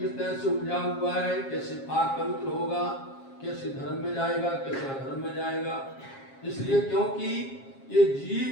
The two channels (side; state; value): right; late; 7.4 ms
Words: तरह से उलझा हुआ है कैसे पाक पवित्र होगा कैसे धर्म में जाएगा कैसे अधर्म में जाएगा। इसलिए क्योंकि ये